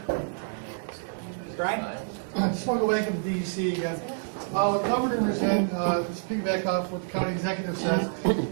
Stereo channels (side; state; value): left; silent; 59 dB below the other